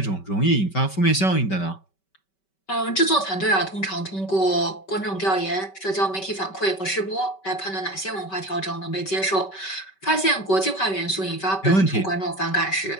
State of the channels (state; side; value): late; right; 5.2 ms